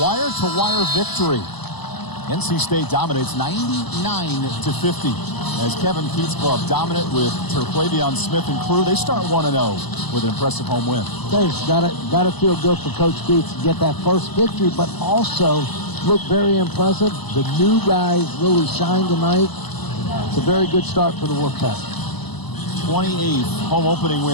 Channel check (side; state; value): right; late; 0.99 ms